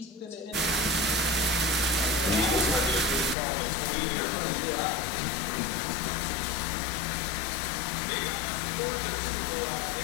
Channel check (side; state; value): right; drops out; at 3.4 s